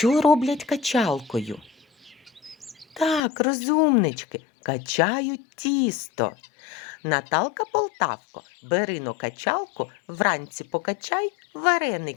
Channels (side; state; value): right; drops out; at 3.2 s